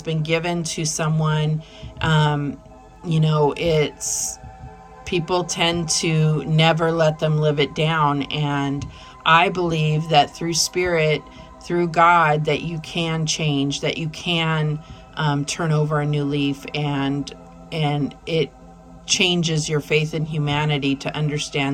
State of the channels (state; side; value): identical; both; correlation 1.00